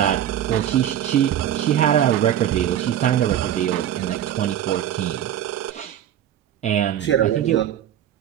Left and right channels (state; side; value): quieter; left; 11.0 dB